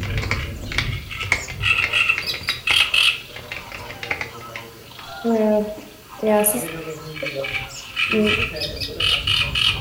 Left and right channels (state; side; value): identical; both; correlation 1.00